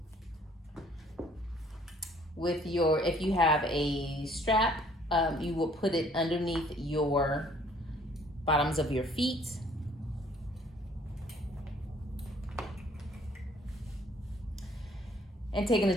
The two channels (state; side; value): normal; both; correlation 0.59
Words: With your, if you have a strap, you will put it underneath your bottoms of your feet. And taking